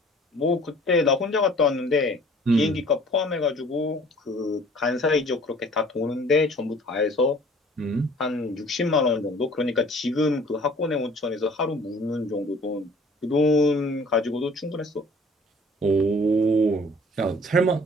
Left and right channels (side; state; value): both; normal; correlation 0.52